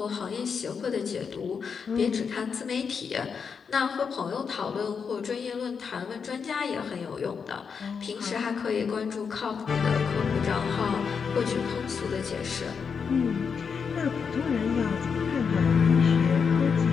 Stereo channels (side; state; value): right; quieter; 6.1 dB